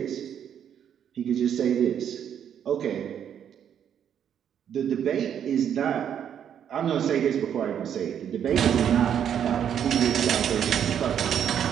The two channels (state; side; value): quieter; left; 9.0 dB